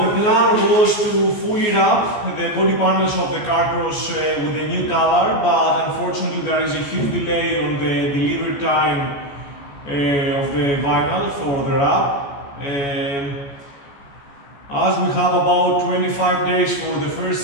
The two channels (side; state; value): right; late; 14 ms